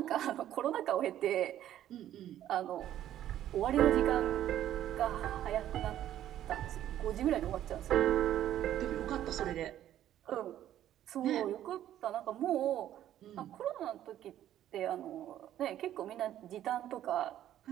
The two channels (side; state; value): left; quieter; 11.9 dB